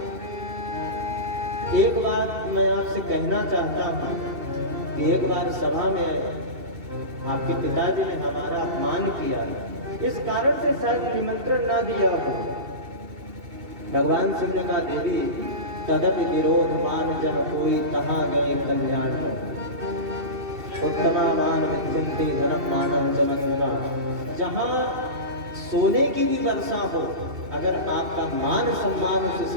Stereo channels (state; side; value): late; left; 2.7 ms